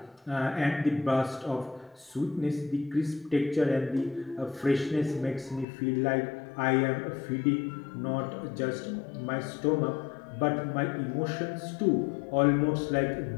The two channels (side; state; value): right; drops out; at 5.7 s